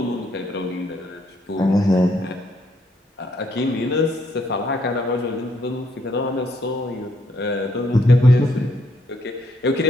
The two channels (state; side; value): normal; both; correlation 0.72